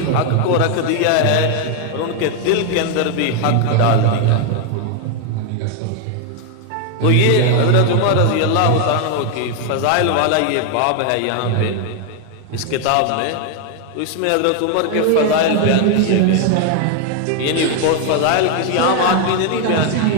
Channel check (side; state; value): both; different; correlation 0.01